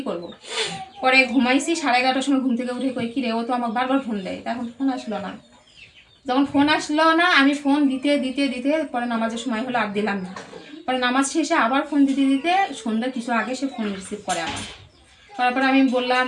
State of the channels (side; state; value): both; identical; correlation 1.00